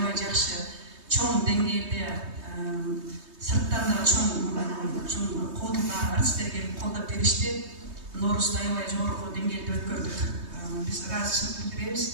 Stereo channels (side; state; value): left; late; 3.2 ms